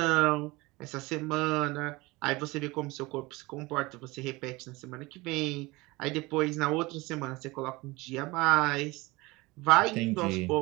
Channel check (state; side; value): quieter; left; 22.5 dB